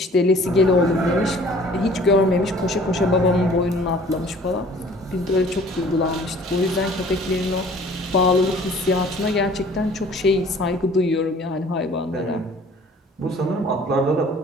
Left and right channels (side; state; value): both; normal; correlation 0.51